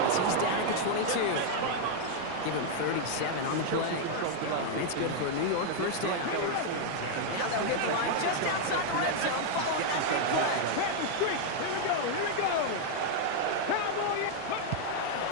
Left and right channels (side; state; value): both; different; correlation 0.00